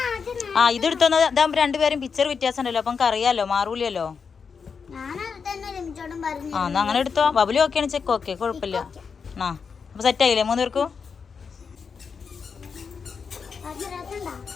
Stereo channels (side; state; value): right; quieter; 5.8 dB